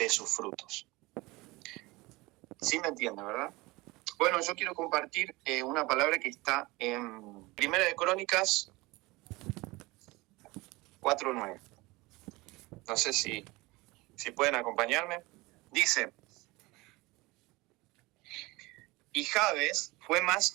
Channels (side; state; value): left; quieter; 22.3 dB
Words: sus frutos. ¿Sí me entiende, verdad? Bueno, yo quiero compartir una palabra que está en Primera de Crónicas 4:9. No sé si pueden acompañarme. Dice, y Jabes fue